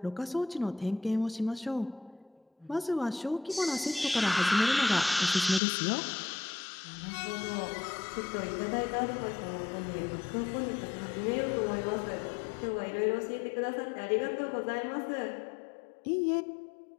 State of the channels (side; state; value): right; drops out; at 5.6 s